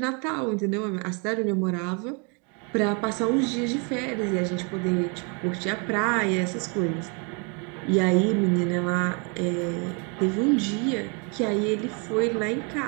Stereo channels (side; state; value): left; quieter; 34.9 dB